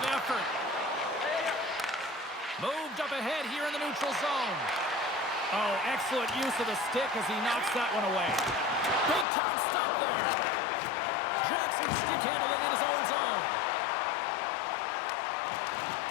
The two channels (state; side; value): drops out; right; at 9.2 s